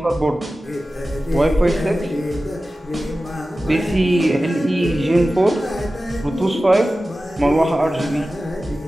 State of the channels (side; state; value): both; normal; correlation 0.95